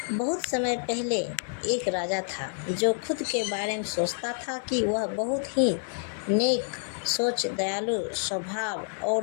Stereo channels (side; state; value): right; silent; 59 dB below the other